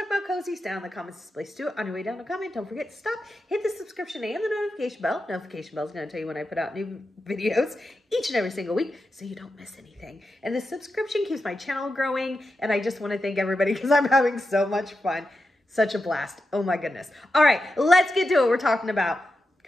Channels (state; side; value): normal; both; correlation 0.89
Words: about cozies, down in the comments is the place to do it. On your way down to comment, don't forget to stop, hit the subscription and the notification bell. Notification bell is going to tell you when I put out new videos each and every single week so you don't miss anything. And the subscription keeps my channel growing, and I just want to thank everybody because I'm having so much fun. Such a blast. Oh my goodness. All right, let's get to it. We're talking about